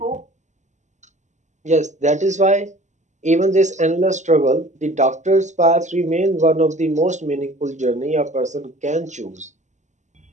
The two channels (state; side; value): late; left; 0.34 ms